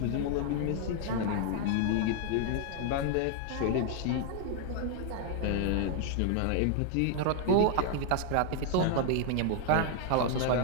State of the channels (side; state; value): both; different; correlation 0.00